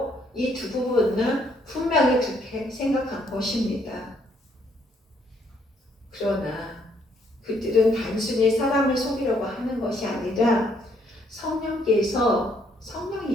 이 두 부분은 분명히 그렇게 생각한 것입니다. 그러나 그들은 단순히 사람을 속이려고 하는 것이 아니라 성령이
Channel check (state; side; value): normal; both; correlation 0.69